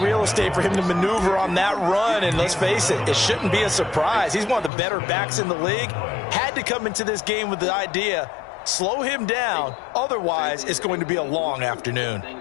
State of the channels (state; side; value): drops out; right; at 4.7 s